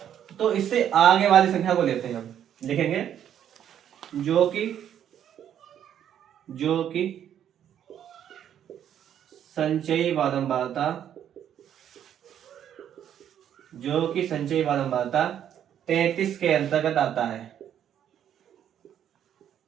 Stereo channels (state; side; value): quieter; left; 9.8 dB